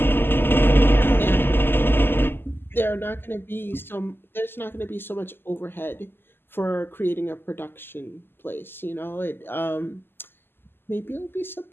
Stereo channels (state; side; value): late; right; 0.10 ms